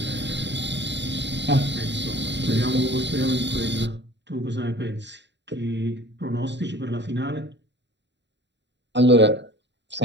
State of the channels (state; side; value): late; left; 0.52 ms